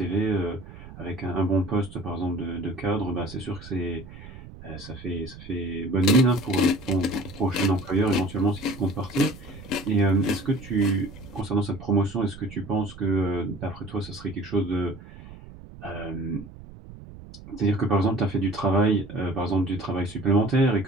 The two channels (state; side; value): noise; right; rumble, 16 dB below the sound